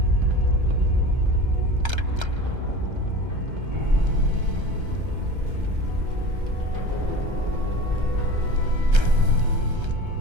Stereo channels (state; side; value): late; left; 1.3 ms